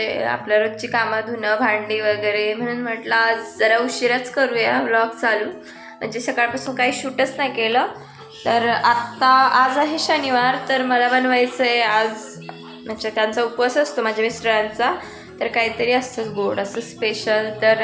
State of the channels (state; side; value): identical; both; correlation 1.00